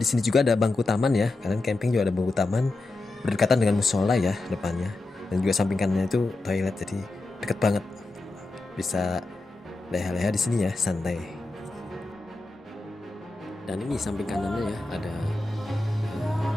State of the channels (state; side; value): quieter; right; 3.1 dB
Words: sini juga ada bangku taman ya. Kalian camping juga ada bangku taman berdekatan dengan musola ya depannya. Dan juga samping kanannya itu toilet, jadi deket banget. Bisa leha-leha di sini ya, santai. Dan ini samping kanannya ya ada